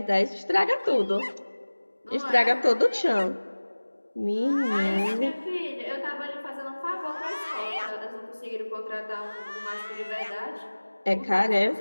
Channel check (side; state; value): both; inverted; correlation -1.00